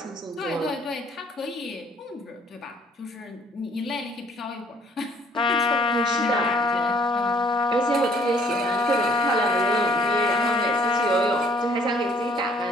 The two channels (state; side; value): normal; both; correlation 0.59